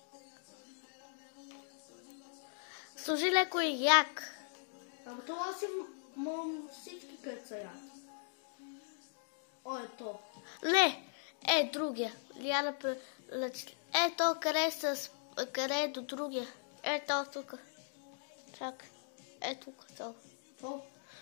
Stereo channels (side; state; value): right; silent; digital silence